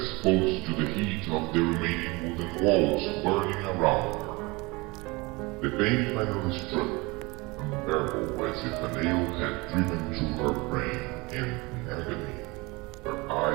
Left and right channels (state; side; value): quieter; left; 24.8 dB